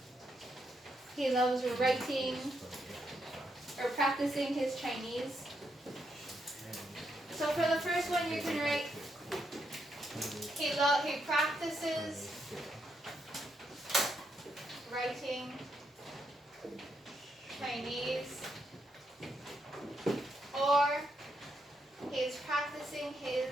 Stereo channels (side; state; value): both; normal; correlation 0.79